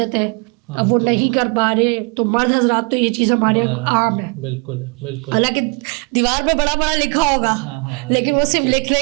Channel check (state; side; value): quieter; left; 32.7 dB